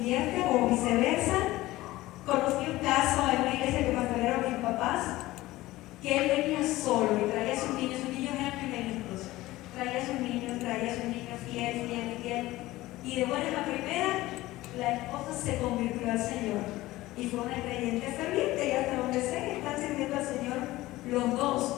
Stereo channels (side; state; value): right; quieter; 17.7 dB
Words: o viceversa. Conocí un caso en una iglesia que pastorearon mis papás, que él venía solo y traía a sus niños eran primeritos, traía a sus niños fiel, y de buenas a primeras, la esposa se convirtió al Señor y fue una creyente ferviente, y hasta donde sé que están sirviendo al Señor los dos.